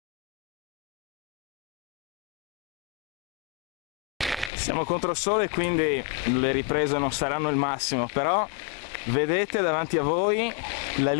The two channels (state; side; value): drops out; right; at 4.5 s